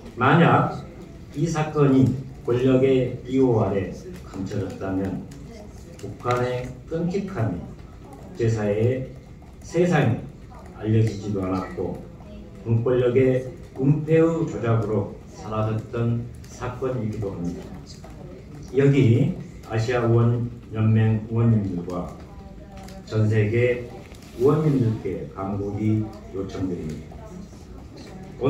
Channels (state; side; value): identical; both; correlation 1.00